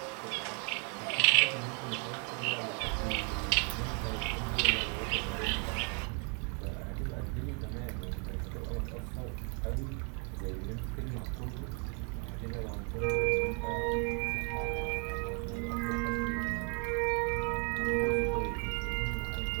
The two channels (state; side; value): quieter; left; 37.3 dB